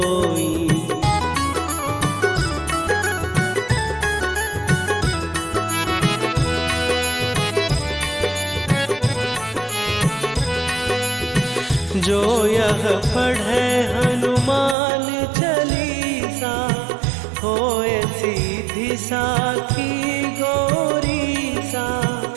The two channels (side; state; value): left; drops out; at 14.8 s